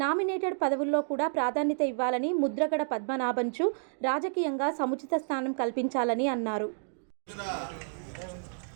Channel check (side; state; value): left; silent; digital silence